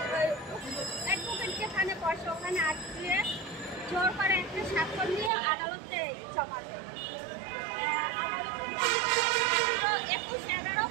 অ্যাডভোকেট যেখানে বসে ওখানে আটকে জোর করে একটা স্বাক্ষর নিয়ে আদালতে জমা দেয়।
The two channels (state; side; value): drops out; left; at 5.3 s